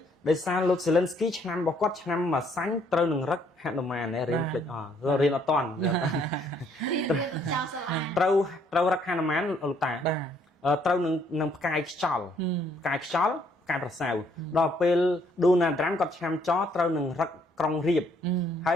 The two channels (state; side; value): normal; both; correlation 0.66